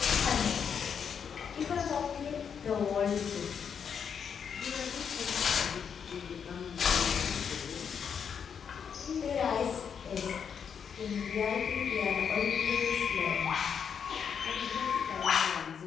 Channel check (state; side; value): quieter; right; 7.2 dB